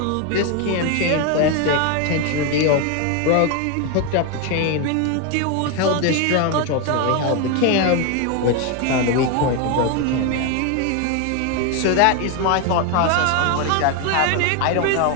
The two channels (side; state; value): both; different; correlation 0.01